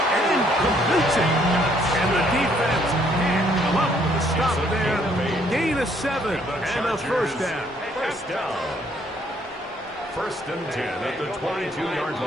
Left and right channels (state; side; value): normal; both; correlation 0.66